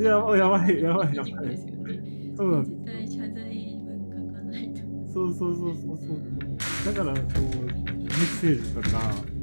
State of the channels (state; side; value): inverted; both; correlation -1.00